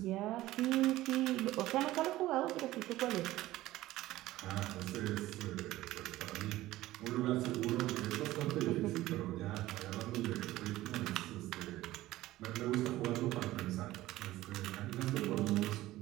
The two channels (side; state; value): left; quieter; 16.3 dB